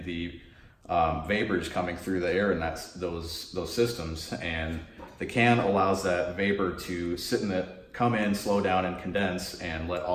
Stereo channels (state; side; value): identical; both; correlation 1.00